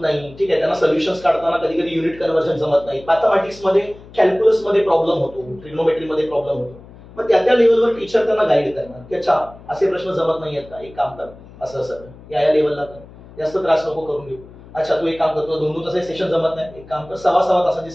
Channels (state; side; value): noise; left; hum, 20 dB below the sound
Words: नाही, ठीक आहे, त्यांना सोल्युशन्स काढताना कधी कधी युनिट कन्व्हर्जन जमत नाही, मॅथमॅटिक्स मध्ये कॅल्क्युलस मध्ये प्रॉब्लेम होतो, ट्रिग्नोमेट्री मध्ये प्रॉब्लेम होतो. मग त्या लेवलवर टीचर त्यांना गाईड करणार की अच्छा असे प्रश्न जमत नाही आहेत का, एक काम कर असं असं या लेवलला कर, जास्त त्रास नको करून घेऊ. अच्छा तू एक काम करतो, 2-2 तासाचे सेशन जमत नाही, एक काम कर 6-6 तासाचे